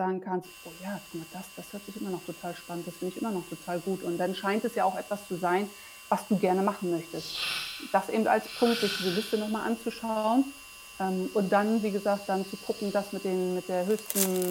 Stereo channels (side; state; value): both; identical; correlation 1.00